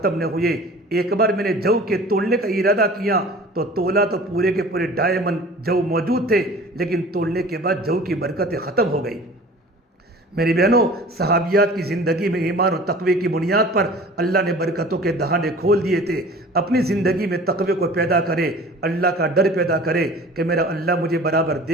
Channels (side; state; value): both; normal; correlation 0.44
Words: نہ ہوئے۔ ایک بار میں نے جو کے تولنے کا ارادہ کیا تو تولا تو پورے کے پورے 2.5 من جو موجود تھے، لیکن تولنے کے بعد جو کی برکتیں ختم ہو گئی۔ میری بہنوں، صحابیات کی زندگی میں ایمان و تقوی کی بنیاد پر اللہ نے برکتوں کے دہانے کھول دیے تھے۔ اپنی زندگی میں تقوی کو پیدا کرے، اللہ کا ڈر پیدا کرے کہ میرا اللہ مجھے برابر